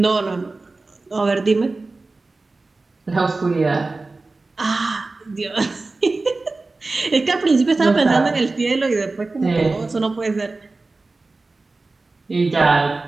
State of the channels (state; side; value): quieter; left; 3.5 dB